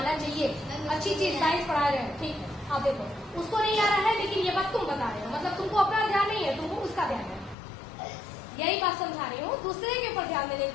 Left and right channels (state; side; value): drops out; right; at 7.6 s